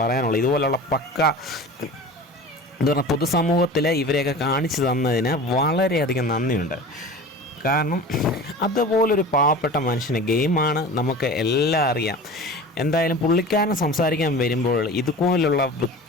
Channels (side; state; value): both; normal; correlation 0.37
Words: പറയാനുള്ളൂ, ഇതുപോലുള്ള എന്താ പറഞ്ഞാൽ പൊതുസമൂഹത്തിൽ ഇവരെയൊക്കെ കാണിച്ചു തന്നതിന് വളരെയധികം നന്ദിയുണ്ട്. കാരണം അതുപോലൊരു പാവപ്പെട്ട മനുഷ്യന് ഗെയിമാണ് നമുക്ക് എല്ലാം അറിയാം. എന്തായാലും പുള്ളിക്കാരൻ സംസാരിക്കാൻ വരുമ്പോൾ ഇതുപോലുള്ള